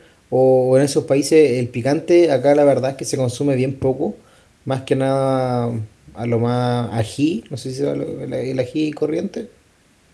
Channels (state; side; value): identical; both; correlation 1.00